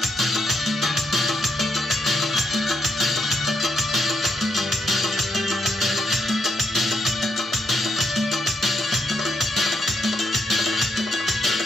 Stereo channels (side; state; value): both; normal; correlation 0.79